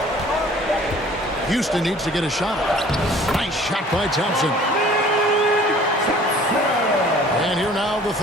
Houston needs to get a shot. Nice shot by Thompson. And here now the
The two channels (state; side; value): normal; both; correlation 0.51